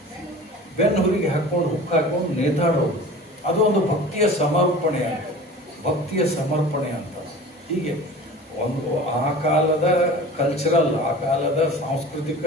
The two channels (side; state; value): both; normal; correlation 0.39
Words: ಬೆನ್ನು ಹುರಿಗೆ ಹಾಕೊಂಡು ಹುಕ್ ಹಾಕೊಂಡು ನೇತಾಡೋದು, ಅದು ಒಂದು ಭಕ್ತಿಯ ಸಮರ್ಪಣೆ ಅಂತ, ಭಕ್ತಿಯ ಸಮರ್ಪಣೆ ಅಂತ. ಹೀಗೆ ಒಂದು ಆ ಕಾಲದ ಕಲ್ಚರಲ್, ಆ ಕಾಲದ ಸಾಂಸ್ಕೃತಿಕ